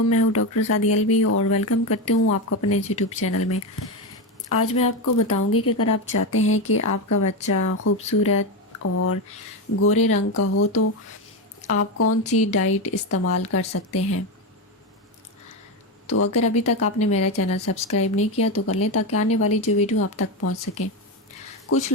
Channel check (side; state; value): both; normal; correlation 0.13